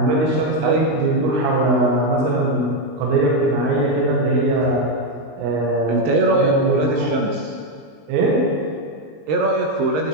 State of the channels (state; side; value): late; left; 20 ms